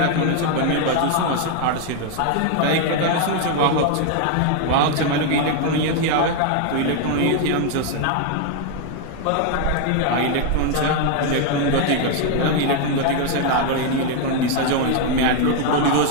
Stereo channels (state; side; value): different; both; correlation 0.01